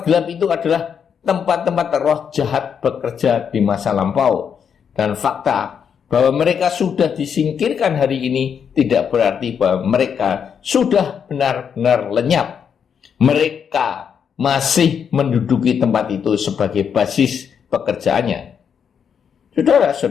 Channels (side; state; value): right; quieter; 7.4 dB